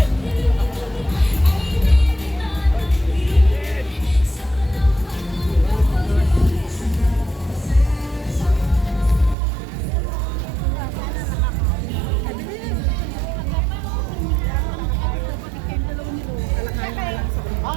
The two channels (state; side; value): drops out; left; at 9.3 s